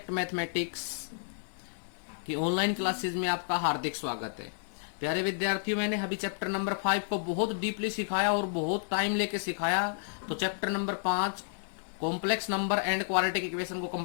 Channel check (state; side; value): silent; right; 57 dB below the other